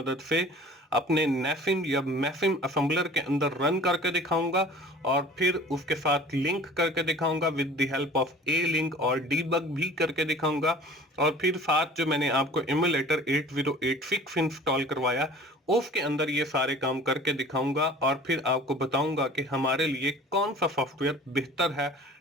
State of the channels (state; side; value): normal; both; correlation 0.45